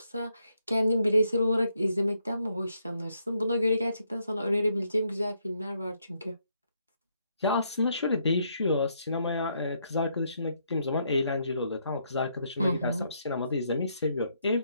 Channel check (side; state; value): both; inverted; correlation -0.75